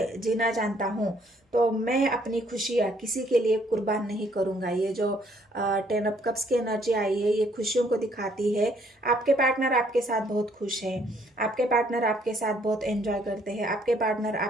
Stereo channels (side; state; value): both; normal; correlation 0.65